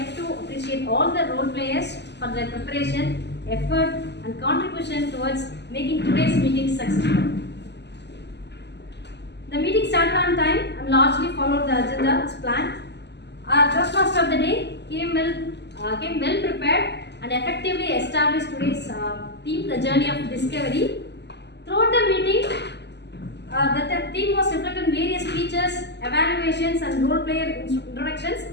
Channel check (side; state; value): right; late; 0.50 ms